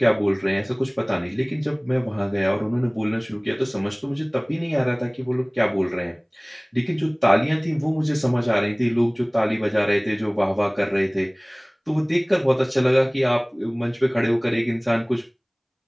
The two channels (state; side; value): identical; both; correlation 1.00